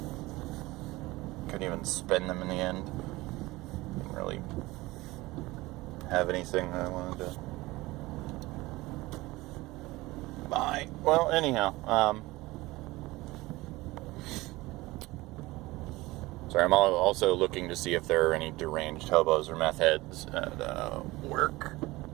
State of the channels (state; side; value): quieter; left; 20.3 dB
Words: Couldn't even spend them in the end. Didn't really have anything that I wanted to buy. Well, anyhow, sorry, I'm also looking to see if there are any deranged hobos or meth heads at work